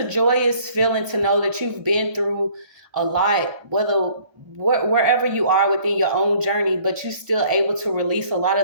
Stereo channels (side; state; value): left; late; 1.3 ms